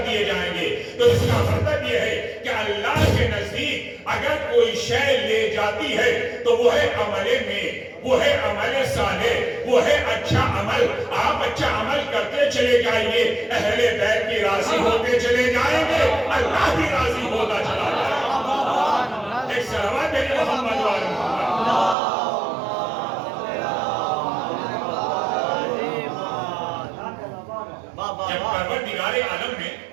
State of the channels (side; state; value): left; drops out; at 22.0 s